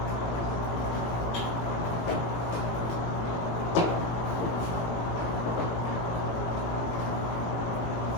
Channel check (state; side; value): late; right; 18 ms